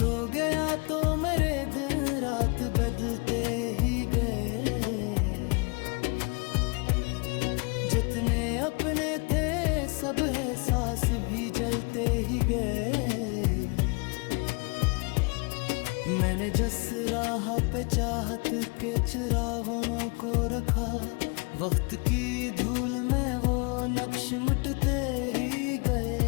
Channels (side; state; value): right; quieter; 31.9 dB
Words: गया तो मेरे दिन रात बदलते ही गए जितने अपने थे सब एहसास भी जलते ही गए मैंने जिस राह पे चाहत के चिरागों को रखा वक्त की धूल में वो नक्श मिटते ही